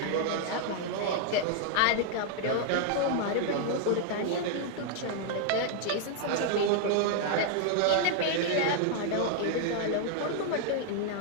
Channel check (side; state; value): both; different; correlation 0.00